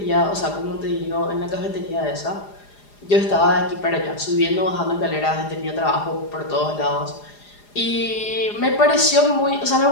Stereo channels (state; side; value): late; right; 4.9 ms